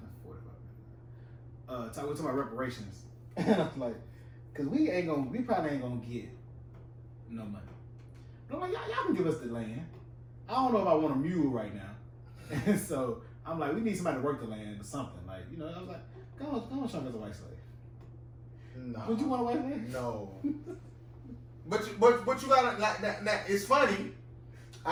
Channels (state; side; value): identical; both; correlation 1.00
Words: 45 minutes. We're talking about reparations. And I was like, cause we probably ain't gonna get no money. But I'm like, y'all can give us the land. I don't know if I want a mule right now. And so I'm like, we need somebody to work the land or something. Like, I was like, go on, show me as a white slave. No. Would you want a white slave? No. But you gotta now, it's funny.